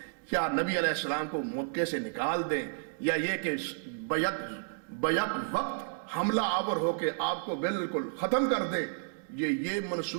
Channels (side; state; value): left; silent; digital silence